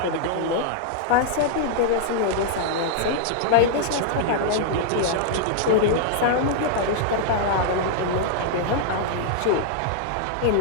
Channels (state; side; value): different; both; correlation -0.01